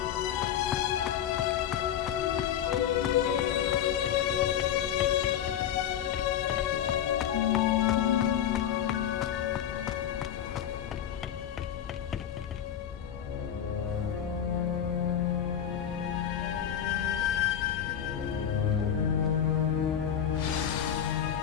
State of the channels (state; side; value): quieter; right; 9.7 dB